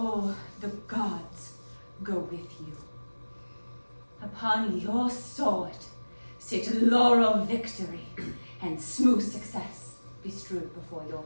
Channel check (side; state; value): both; inverted; correlation -1.00